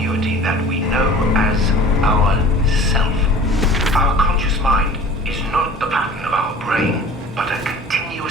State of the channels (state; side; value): normal; both; correlation 0.44